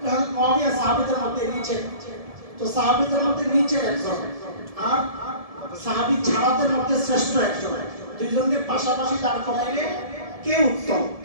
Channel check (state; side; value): late; left; 1.7 ms